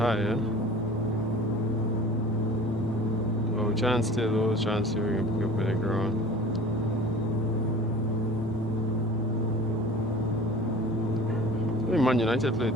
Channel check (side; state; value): both; normal; correlation 0.42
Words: yeah? But we're trying to stay low, trying to see if we can pick up with the ground. I think Man United played